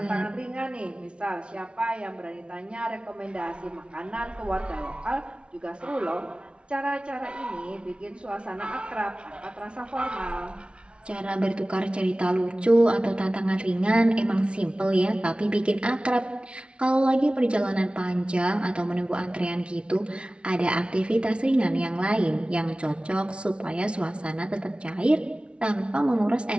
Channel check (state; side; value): late; left; 0.058 ms